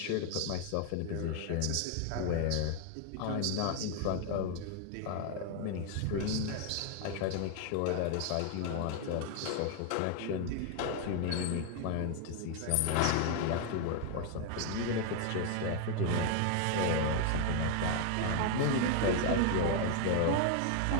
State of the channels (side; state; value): both; different; correlation 0.00